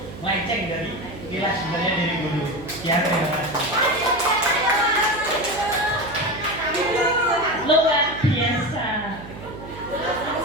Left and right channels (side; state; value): right; noise; hum, 14 dB below the sound